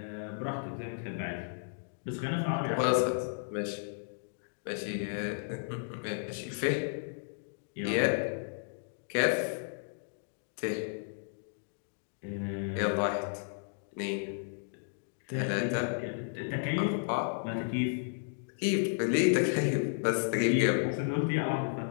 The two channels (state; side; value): silent; right; digital silence